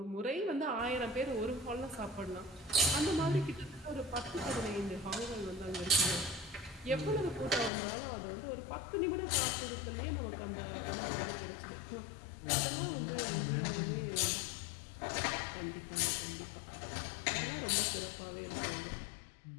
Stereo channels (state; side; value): drops out; right; at 7.7 s